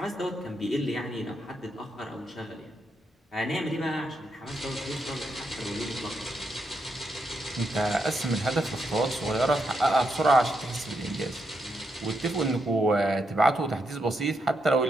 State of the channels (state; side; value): normal; both; correlation 0.81